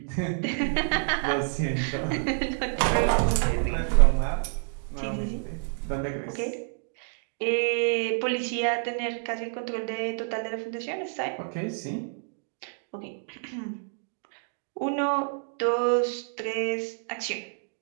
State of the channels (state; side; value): silent; left; 59 dB below the other